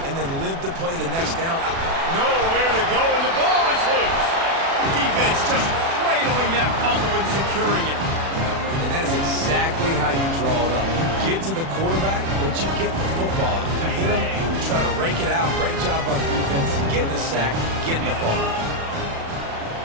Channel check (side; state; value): left; late; 36 ms